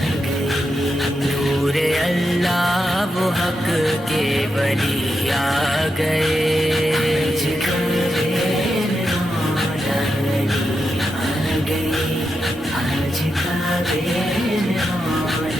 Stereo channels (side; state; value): both; normal; correlation 0.86